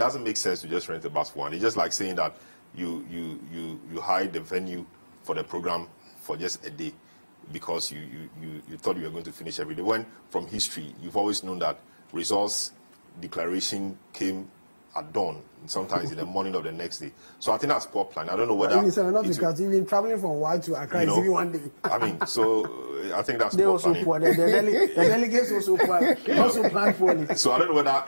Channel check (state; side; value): inverted; both; correlation -1.00